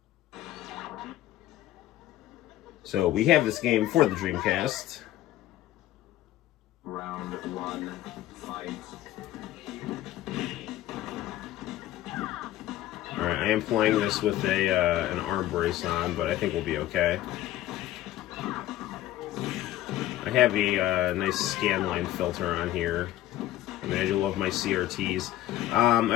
So we have this game for the Dreamcast. Round 1, fight. Alright, I am playing this with an arm brace on, but I think we'll be okay. I have a nice scanline filter on here. I mean, I do love my CRTs. I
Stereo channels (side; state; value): right; quieter; 14.1 dB